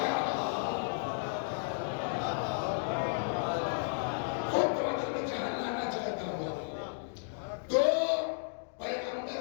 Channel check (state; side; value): silent; right; digital silence